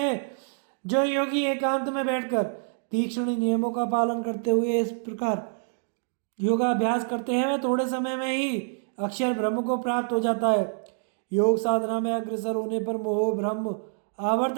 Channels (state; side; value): silent; left; digital silence